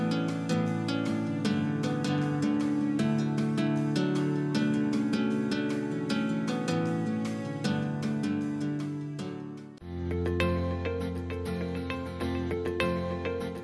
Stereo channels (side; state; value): both; identical; correlation 1.00